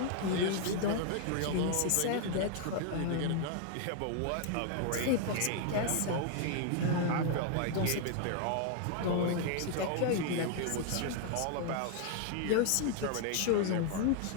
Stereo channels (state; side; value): different; both; correlation 0.00